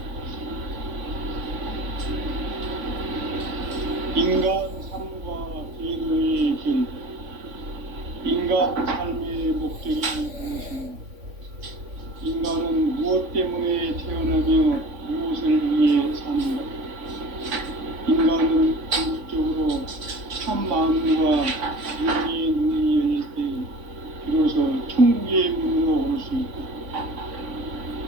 인간 삶과 제도의 길. 인간 삶의 목적이 무엇인가? 인간은 무엇 때문에 태어나며 무엇을 위해 사는가? 인간은 궁극적으로 참 마음과 윤리의 눈이 열릴 때 비로소 천국의 문으로 올 수 있다.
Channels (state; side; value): late; left; 3.5 ms